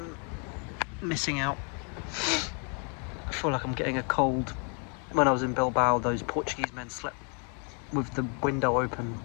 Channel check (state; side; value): quieter; right; 36.6 dB